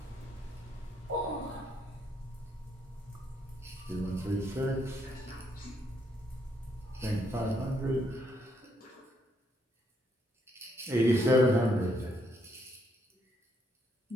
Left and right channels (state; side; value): normal; both; correlation 0.73